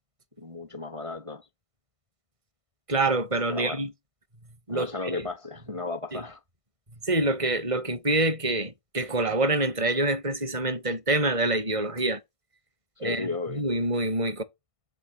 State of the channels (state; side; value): late; left; 1.5 ms